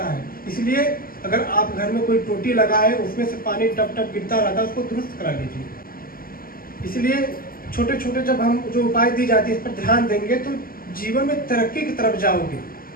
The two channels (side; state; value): right; late; 0.42 ms